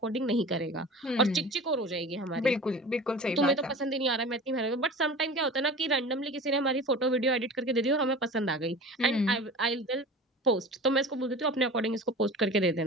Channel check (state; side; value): normal; both; correlation 0.37